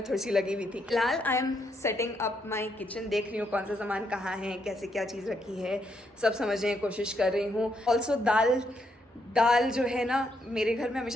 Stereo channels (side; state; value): both; normal; correlation 0.76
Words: थोड़ी सी लगी हुई थी. फिलहाल I am setting up my kitchen, देख रही हूँ कौन सा सामान कहाँ है, कैसे क्या चीज़ रखी है, सब समझने की कोशिश कर रही हूँ. ऑल्सो दाल जो है ना, मेरे घर में